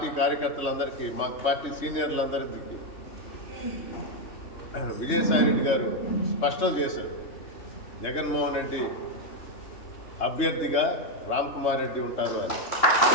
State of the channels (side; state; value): right; late; 3.2 ms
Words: కార్యకర్తలందరికీ, మా పార్టీ సీనియర్లందరికీ విజయసాయిరెడ్డి గారు స్పష్టం చేశారు, జగన్మోహన్ రెడ్డి అభ్యర్థిగా రామ్ కుమార్ రెడ్డి ఉంటారు అని.